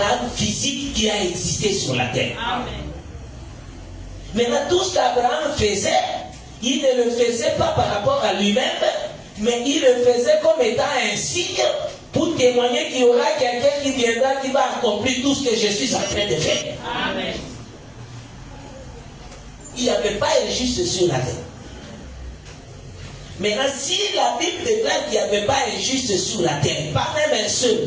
physique qui a existé sur la terre. Amen. Maintenant, tout ce qu'Abraham faisait, il ne le faisait pas par rapport à lui-même, mais il le faisait comme étant un signe pour témoigner qu'il y aura quelqu'un qui viendra, qui va accomplir tout ce que je suis en train de faire. Amen. Il n'y avait pas un juste sur la terre. Maintenant, si la Bible déclare qu'il n'y avait pas un juste sur la terre, pas même un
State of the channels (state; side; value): identical; both; correlation 1.00